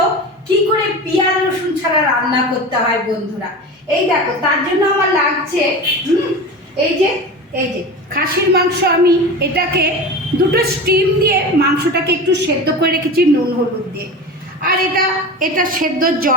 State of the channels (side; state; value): both; normal; correlation 0.30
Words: কি করে পেঁয়াজ রসুন ছাড়া রান্না করতে হয় বন্ধুরা। এই দেখো, তার জন্য আমার লাগছে এই যে খাসির মাংস। আমি এটাকে দুটো স্টিম দিয়ে মাংসটাকে একটু সেদ্ধ করে রেখেছি নুন হলুদ দিয়ে। আর এটা সেদ্ধ